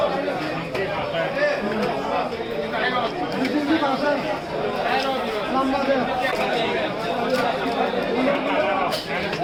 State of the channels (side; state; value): both; identical; correlation 1.00